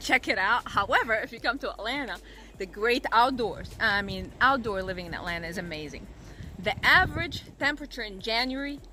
it out. However, if you come to Atlanta, the great outdoors, outdoor living in Atlanta is amazing. The average temperature in January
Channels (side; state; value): both; identical; correlation 1.00